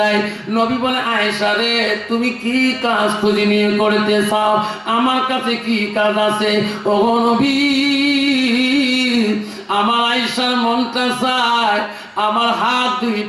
নবী বলে, আয়েশা রে তুমি কি কাজ খুঁজি নিয়ে করতে চাও? আমার কাছে কি কাজ আছে? ওগো নবী আমার আয়েশার মনটা চায় আমার হাত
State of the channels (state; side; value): identical; both; correlation 1.00